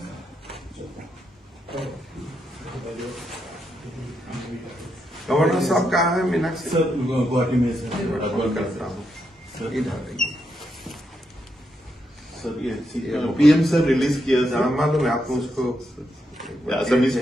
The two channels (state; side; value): normal; both; correlation 0.82